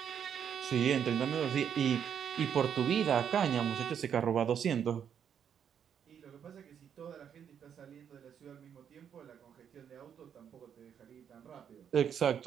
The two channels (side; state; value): left; quieter; 8.3 dB